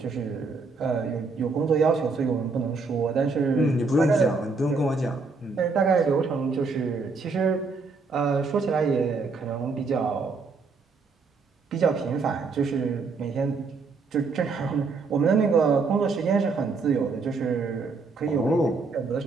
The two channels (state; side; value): quieter; left; 4.2 dB